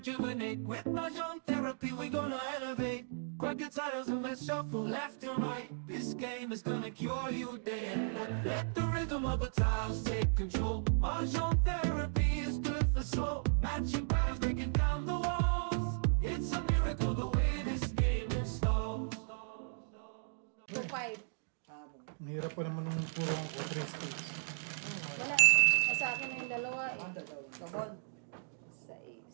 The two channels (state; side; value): silent; left; digital silence